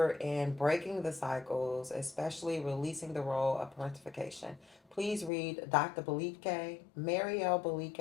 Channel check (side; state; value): right; drops out; at 5.3 s